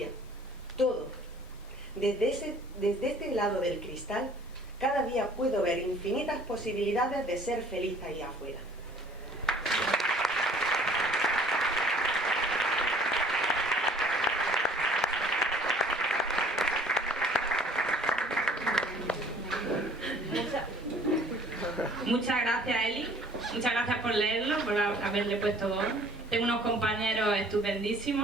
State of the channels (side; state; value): both; normal; correlation 0.54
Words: todo. Desde este lado del cristal, cada día puedo ver infinitas posibilidades de ser feliz ahí afuera. Muchas gracias, Eli. Muchas gracias por leerlo, por haberle puesto voz. Tengo unos compañeros